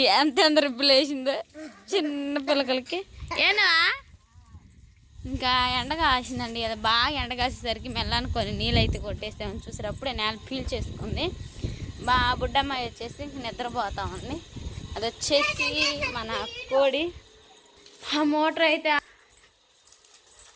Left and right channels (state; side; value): identical; both; correlation 1.00